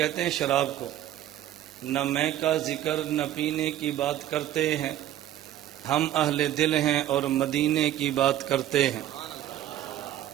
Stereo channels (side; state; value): left; quieter; 12.5 dB